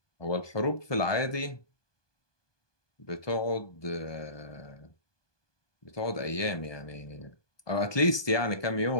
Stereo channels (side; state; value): right; late; 1.2 ms